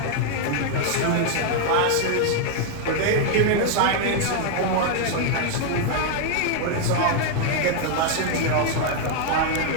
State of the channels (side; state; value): both; different; correlation 0.00